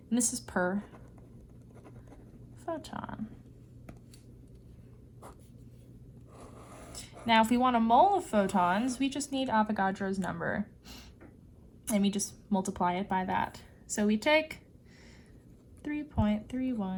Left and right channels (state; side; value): identical; both; correlation 1.00